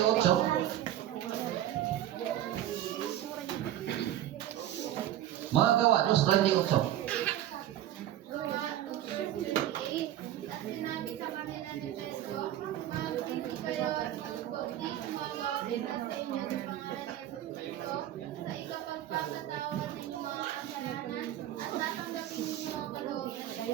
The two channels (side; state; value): left; quieter; 12.6 dB